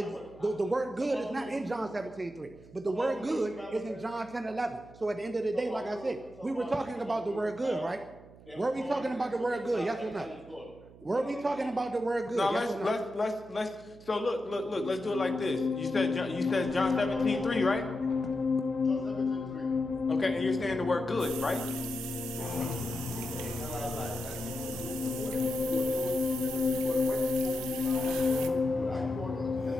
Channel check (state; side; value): noise; right; hum, 21 dB below the sound